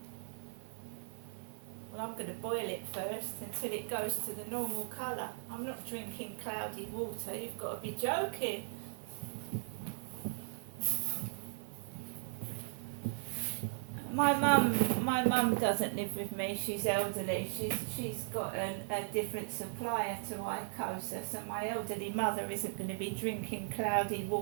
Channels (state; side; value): silent; left; digital silence